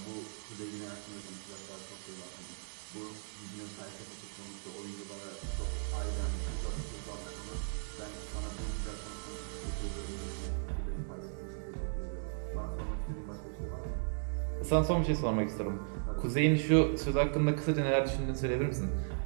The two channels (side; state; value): left; silent; digital silence